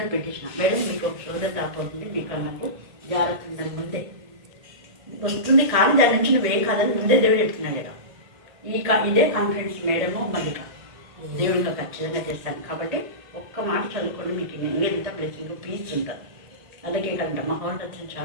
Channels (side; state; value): left; late; 1.7 ms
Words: పెట్టించిన. మేడం మీకు ఒక సోదరు రాకపోతుంది, మీకు నాకు జాగ్రత్త ముందే వస్తుంది, కానీ దాని నుంచి నువ్వేం కాదని ముందే దేవుడు చెప్తున్నాడు కదా. ఇదే కాన్ఫిడెన్స్ మేడము మల్లిక దేవుడిగా ఖచ్చితంగా చేస్తాను. కాబట్టి ఒక్క మాట చదువుకోండి, మీకు ఎంత బ్లెస్సింగ్ పీస్ ఉంటుంది. అలాగే కంట మహోన్నతుని